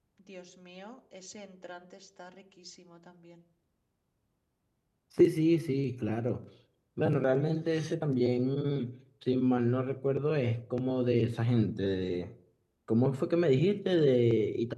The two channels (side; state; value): both; identical; correlation 1.00